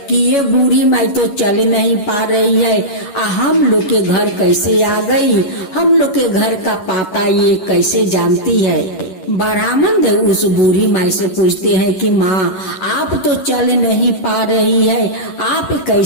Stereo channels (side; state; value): right; late; 11 ms